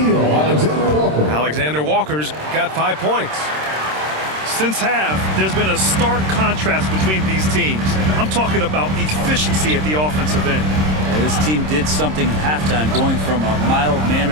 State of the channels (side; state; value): left; late; 26 ms